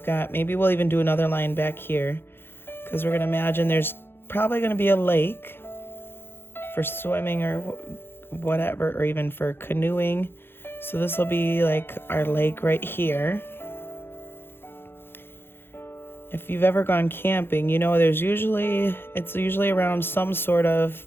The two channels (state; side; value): late; right; 0.10 ms